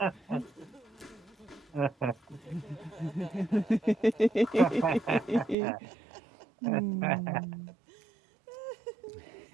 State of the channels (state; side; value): drops out; left; at 5.6 s